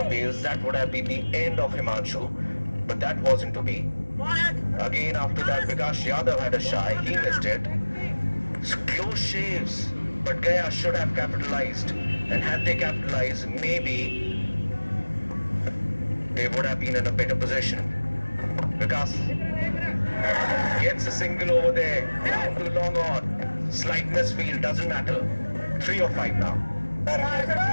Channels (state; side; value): inverted; both; correlation -1.00